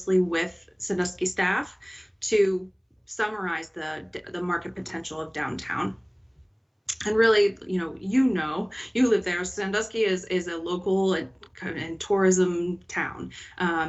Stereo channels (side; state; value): both; identical; correlation 1.00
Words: with Sandusky staff to summarize the market potential of downtown. And really, you live there. Sandusky is a local and tourism town.